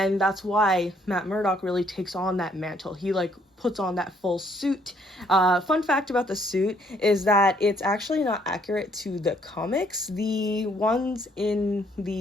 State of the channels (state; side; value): normal; both; correlation 0.66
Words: that's why Matt Murdock really takes on that mantle. He puts on that full suit. Fun fact about the suit is that it's actually not accurate to the comics. The ones in